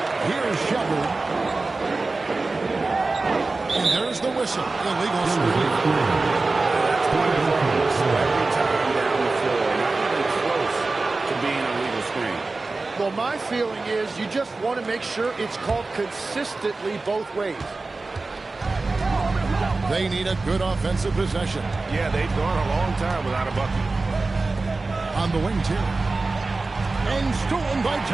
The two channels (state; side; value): quieter; left; 3.5 dB